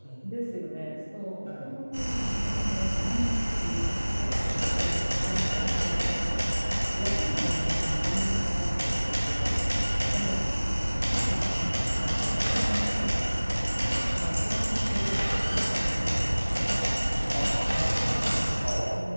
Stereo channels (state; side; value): inverted; both; correlation -1.00